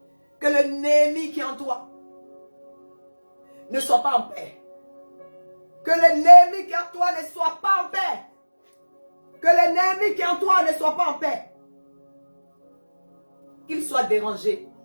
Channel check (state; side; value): inverted; both; correlation -1.00